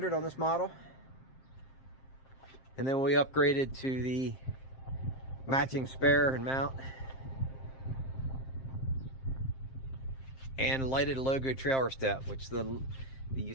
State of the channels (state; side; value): late; right; 7.6 ms